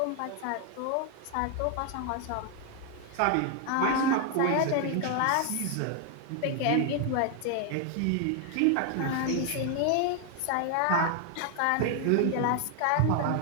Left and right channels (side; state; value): both; different; correlation 0.00